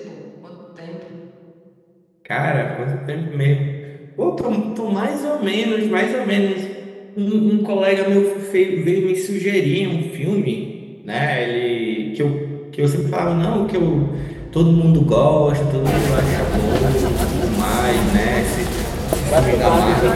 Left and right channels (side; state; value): both; identical; correlation 1.00